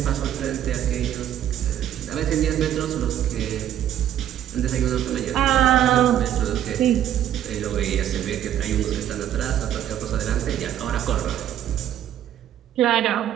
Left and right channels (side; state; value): left; quieter; 11.1 dB